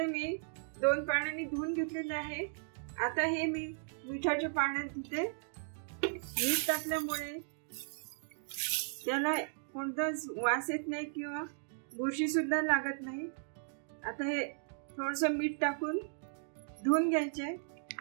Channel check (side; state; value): left; silent; digital silence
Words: मी 2 पाण्याने धुवून घेतलेले आहे। आता हे मी मिठाच्या पाण्यात धुते। मीठ टाकल्यामुळे त्याला कोणताच वास येत नाही किंवा बुरशी सुद्धा लागत नाही। आता हे थोडस मीठ टाकून धुवून घ्यायचे,